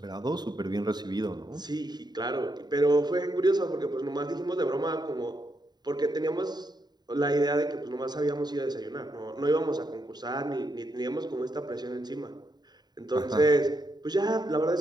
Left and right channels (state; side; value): late; left; 0.20 ms